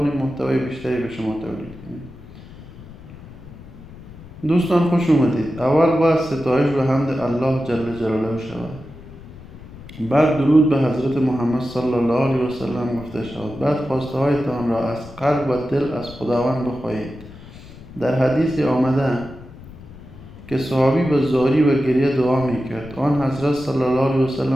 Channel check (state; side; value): noise; left; rumble, 17 dB below the sound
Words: محتوای بیشتری به شما تولید کنیم. دوستان خوش اومدید. اول باید ستایش و حمد الله جل جلاله شود. بعد درود به حضرت محمد صلی الله علیه و سلم گفته شود. بعد خواسته هایتان را از قلب و دل از خداوند بخواهید. در حدیث آمده که صحابی به زاری و گریه دعا میکرد. آن حضرت صلی الله علیه و